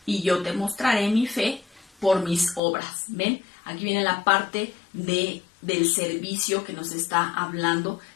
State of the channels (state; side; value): drops out; right; at 2.6 s